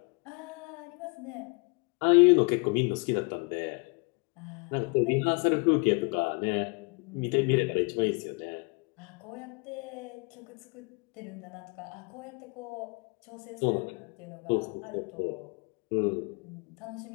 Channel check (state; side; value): quieter; right; 30.9 dB